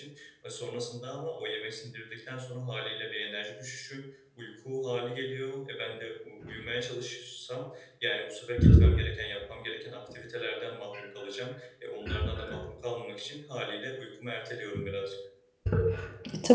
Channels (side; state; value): both; identical; correlation 1.00